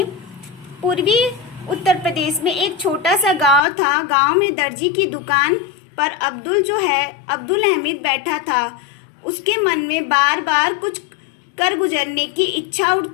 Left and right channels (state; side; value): drops out; right; at 3.6 s